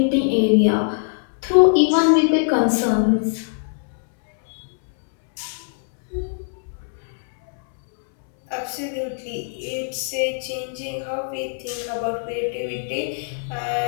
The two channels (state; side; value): silent; right; 64 dB below the other